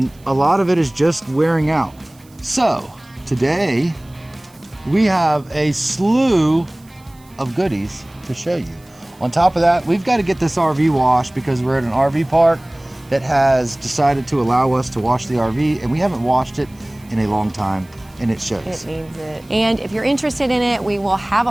a lot of it is just wearing out. So today we have a slew of goodies to show you. On top of that, we've got to get this RV washed because we're at an RV park that has decided to allow us to wash the RV, and we haven't washed it in a long time, and it shows. It needs it. And if you're interested in it, we will have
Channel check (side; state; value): right; noise; hiss, 29 dB below the sound